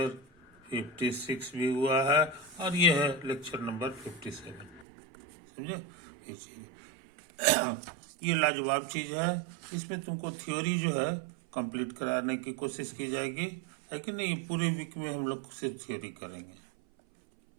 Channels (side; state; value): left; drops out; at 4.9 s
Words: 56 भी हुआ है, और ये है लेक्चर नंबर 57। समझे? ये चीज़ ये लाजवाब चीज़ है। इसमें तुमको थ्योरी जो है कंप्लीट कराने की कोशिश की जाएगी, है कि नहीं? पूरे वीक में हम लोग सिर्फ थ्योरी करेंगे,